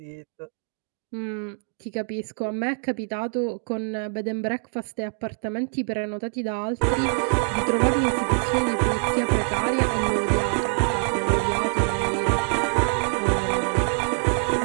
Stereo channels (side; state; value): left; silent; digital silence